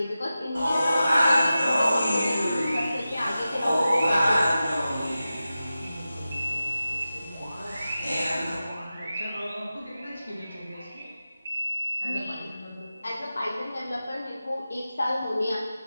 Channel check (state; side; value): inverted; both; correlation -0.93